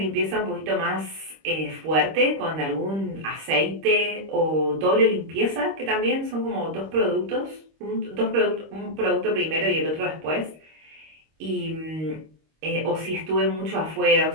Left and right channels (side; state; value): left; late; 25 ms